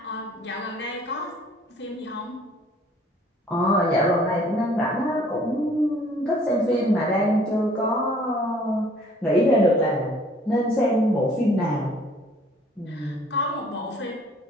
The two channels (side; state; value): both; normal; correlation 0.57